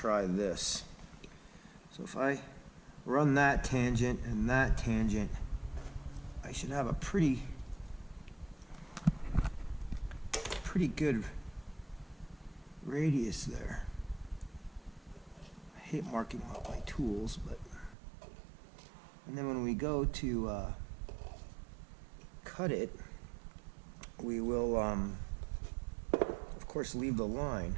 this. So if I run that tangent and that tangent, I should have a pretty good radius there. I hate marking out my tools, but... And then when we go to cut it, we will, of course, leave the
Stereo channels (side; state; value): left; drops out; at 17.9 s